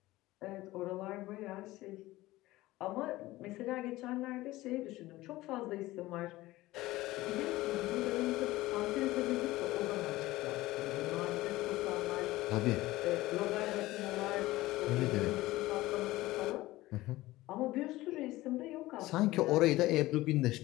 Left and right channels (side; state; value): right; quieter; 17.9 dB